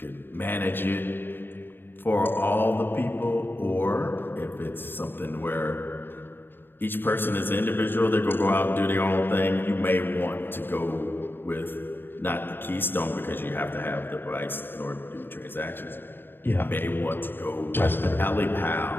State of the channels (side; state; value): right; late; 0.098 ms